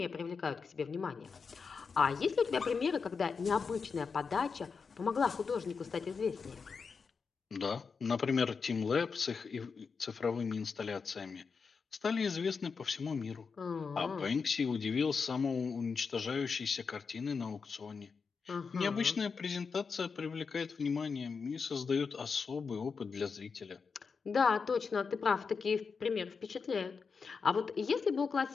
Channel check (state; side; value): quieter; right; 5.3 dB